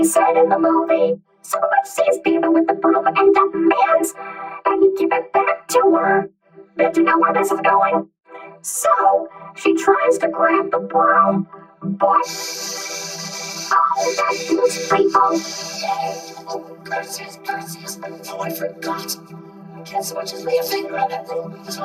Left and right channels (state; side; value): identical; both; correlation 1.00